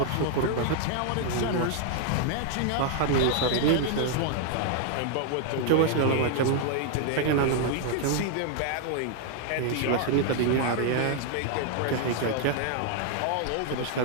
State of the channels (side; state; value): both; different; correlation 0.00